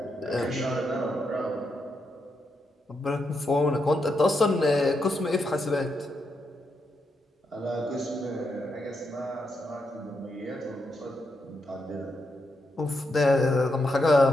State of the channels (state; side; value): normal; both; correlation 0.82